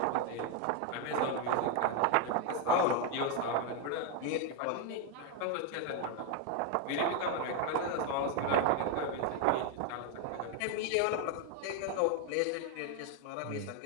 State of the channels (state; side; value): different; both; correlation 0.01